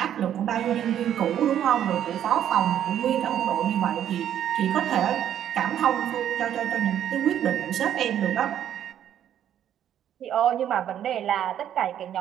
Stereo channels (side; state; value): left; quieter; 10.3 dB